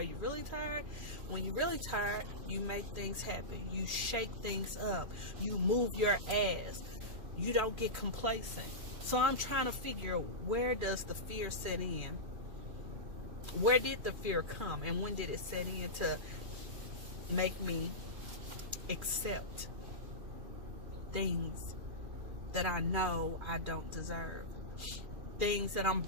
you really tired? When you're really tired, you make things happen. You shake things up. You move your ass. You don't get complacent. So I'm trying to figure, where does the fear set in? Where did the fear come? And when did it set in to make me accept things that I know I don't deserve? Things that I'm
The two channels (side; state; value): left; late; 2.4 ms